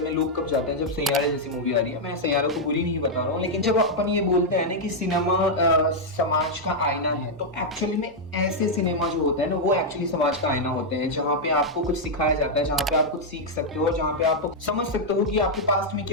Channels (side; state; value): both; normal; correlation -0.02